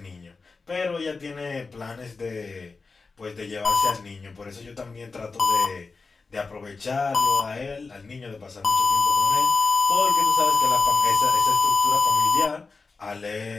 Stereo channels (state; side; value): quieter; right; 4.2 dB